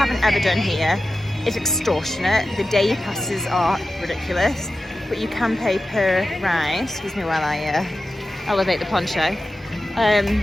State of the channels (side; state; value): both; normal; correlation 0.93